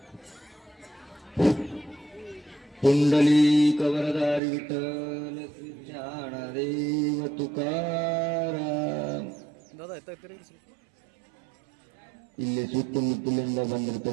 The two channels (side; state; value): left; drops out; at 4.4 s